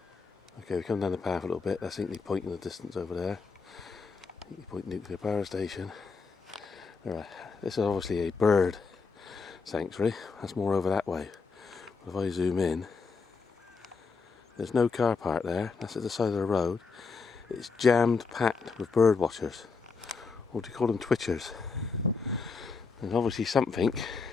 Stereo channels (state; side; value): quieter; right; 4.8 dB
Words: Okay, we come down the path a little bit. That's Hinkley Point in the distance over there. Hinkley Point Nuclear Power Station. Alright, this is obviously a bird sanctuary. That's more over that way. But if I zoom in, there's no car park there. That's at the side of the road. It's jammed packed with bird watchers. Or do you call them twitchers? There's obviously something